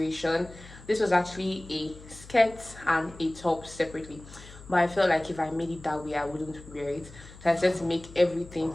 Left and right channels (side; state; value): left; noise; hum, 18 dB below the sound